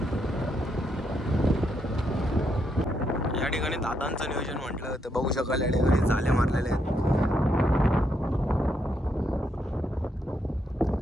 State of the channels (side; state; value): both; normal; correlation 0.78